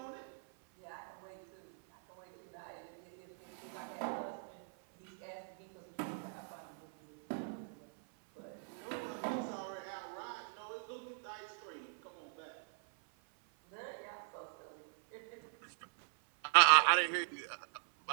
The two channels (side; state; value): left; silent; 51 dB below the other